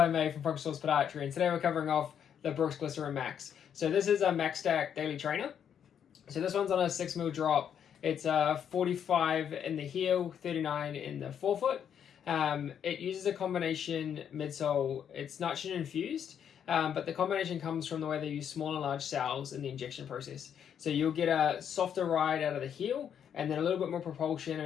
May from Focus Source Podiatry, and today we're covering off the Brooks Glycerin Max. So this is a Max Stack Daily Trainer. So this one's on a 6mm drop. It's 45 in the heel, 39 in the forefoot. It uses a combination midsole. It's nitrogen infused, but the combination comes from the way they use small and large cells in the injection process. So you'll get a softer ride out of the heel, and then a little bit more propulsion and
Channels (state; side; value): quieter; right; 8.6 dB